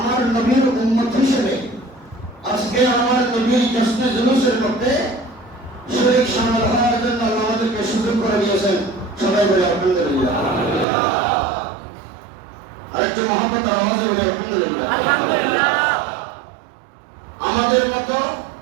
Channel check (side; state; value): left; drops out; at 10.9 s